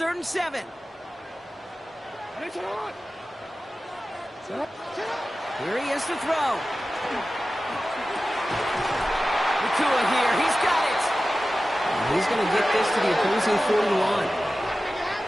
and 7. Here he is to throw. Nakua here. He's got it. And he's going to get this to the opposing 41.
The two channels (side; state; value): both; normal; correlation 0.95